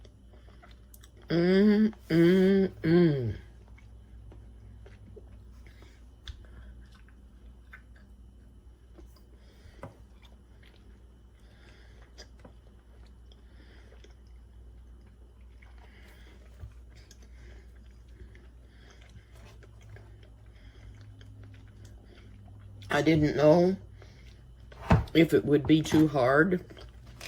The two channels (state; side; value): identical; both; correlation 1.00